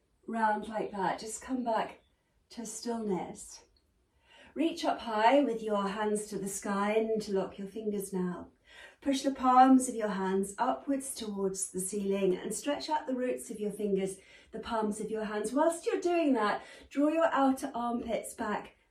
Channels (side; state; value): both; identical; correlation 1.00